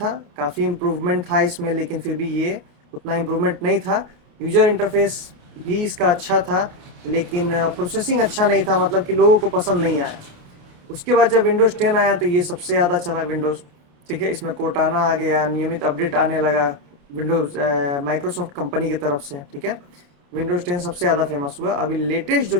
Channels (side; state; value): left; late; 28 ms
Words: काफ़ी इम्प्रूवमेंट था इसमें, लेकिन फिर भी ये उतना इम्प्रूवमेंट नहीं था। यूज़र इंटरफेस भी इसका अच्छा था लेकिन प्रोसेसिंग अच्छा नहीं था, मतलब कि लोगों को पसंद नहीं आया। उसके बाद जब विंडोज़ 10 आया तो ये सबसे ज़्यादा चला विंडोज़, ठीक है। इसमें कोर्टाना आ गया, नियमित अपडेट आने लगा विंडोज़ माइक्रोसॉफ्ट कंपनी की तरफ से, ठीक है। विंडोज़ 10 सबसे ज़्यादा फेमस हुआ। अभी लेटेस्ट जो